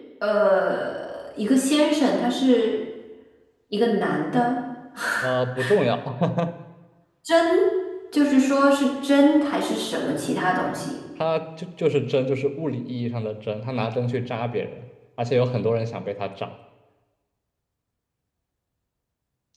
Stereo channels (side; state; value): both; identical; correlation 1.00